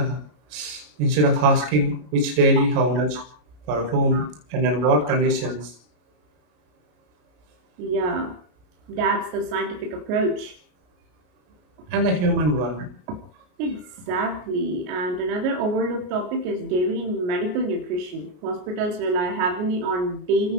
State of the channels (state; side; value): late; left; 33 ms